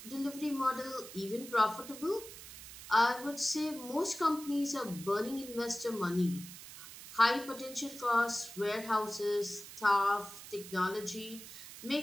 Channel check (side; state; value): right; noise; hiss, 14 dB below the sound